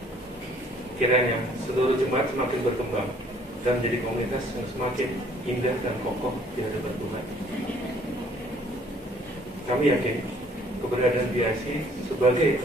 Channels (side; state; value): both; normal; correlation 0.59